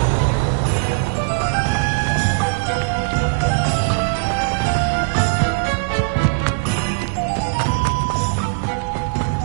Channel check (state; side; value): silent; left; 66 dB below the other